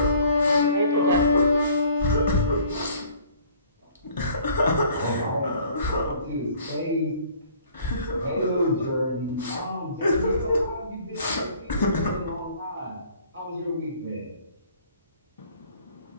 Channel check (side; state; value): both; inverted; correlation -0.55